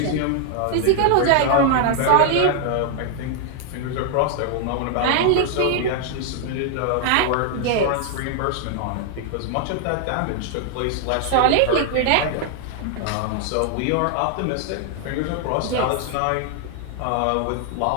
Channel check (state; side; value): different; both; correlation 0.00